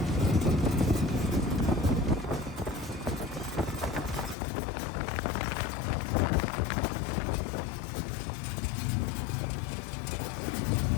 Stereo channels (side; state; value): right; drops out; at 4.4 s